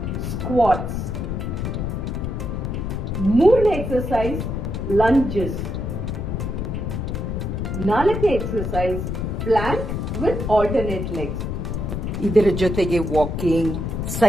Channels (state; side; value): noise; left; rumble, 3 dB below the sound